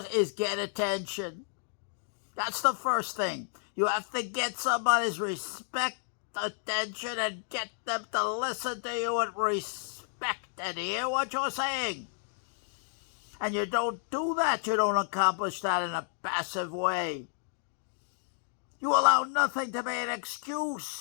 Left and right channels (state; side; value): silent; right; digital silence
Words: is get attention. That's the first thing. You have to get somebody's respect, attention, and get them to listen to you with respect and hear what you're saying. And you don't do that, you don't accomplish that in a passive way. You allow nothing to be an